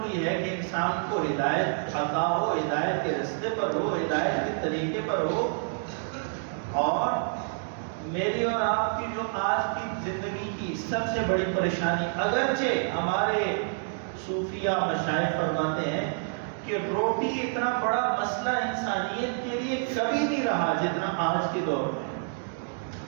ہے کہ انسان کو ہدایت عطا ہو، ہدایت کے رستے پر ہو، ہدایت کے طریقے پر ہو۔ اور میری اور آپ کی جو آج کی زندگی کی سب سے بڑی پریشانی، اگرچہ ہمارے صوفیہ مشائخ فرماتے ہیں کہ روٹی اتنا بڑا مسئلہ انسانیت کے لیے کبھی نہیں رہا جتنا آج کے دور میں،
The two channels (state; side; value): silent; left; digital silence